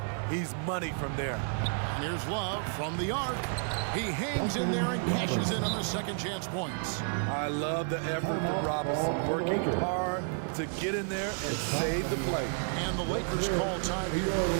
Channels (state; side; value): silent; left; 57 dB below the other